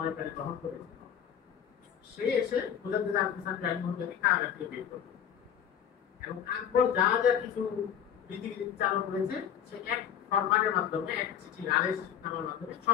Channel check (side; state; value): right; quieter; 9.0 dB